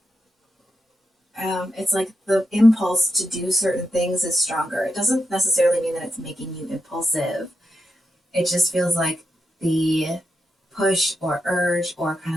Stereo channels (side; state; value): both; normal; correlation 0.86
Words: it's like the impulse to do certain things is stronger. It doesn't necessarily mean that it's making you impulsive. It just feels like the push or urge or kind